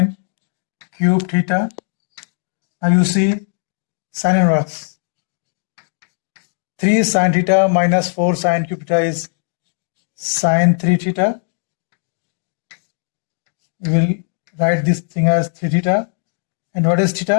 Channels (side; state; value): right; silent; 67 dB below the other